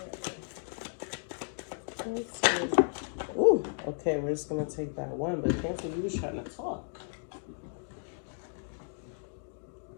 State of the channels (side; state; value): right; silent; 55 dB below the other